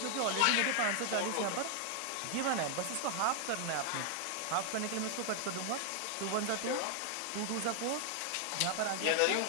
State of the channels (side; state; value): both; different; correlation 0.00